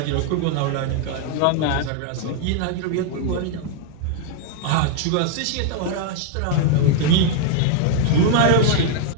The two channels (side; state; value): both; different; correlation 0.00